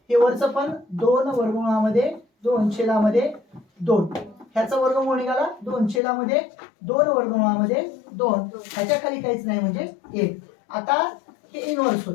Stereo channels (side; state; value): right; drops out; at 6.0 s